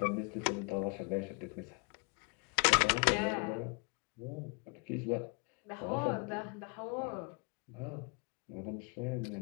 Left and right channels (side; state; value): right; quieter; 33.3 dB